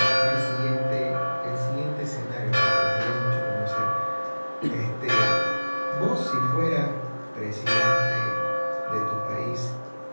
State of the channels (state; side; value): inverted; both; correlation -1.00